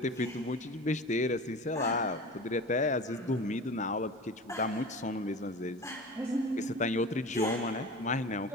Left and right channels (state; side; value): normal; both; correlation 0.34